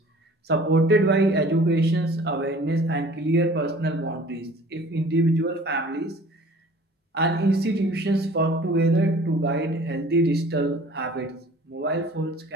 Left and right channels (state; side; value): normal; both; correlation 0.48